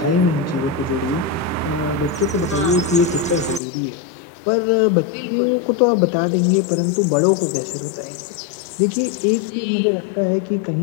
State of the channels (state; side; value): drops out; right; at 3.6 s